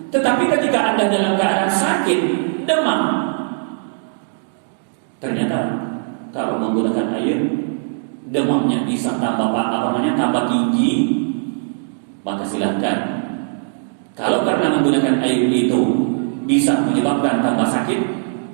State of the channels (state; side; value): silent; left; digital silence